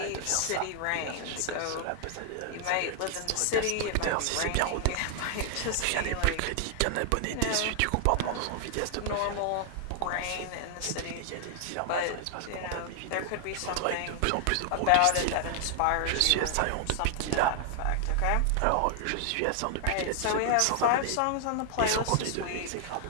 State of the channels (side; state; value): both; different; correlation 0.00